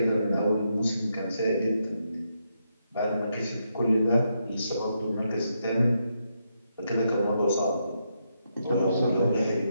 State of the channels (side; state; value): both; inverted; correlation -0.81